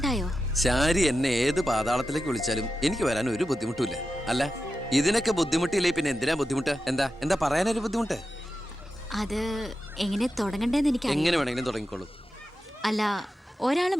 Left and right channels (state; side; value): normal; both; correlation 0.91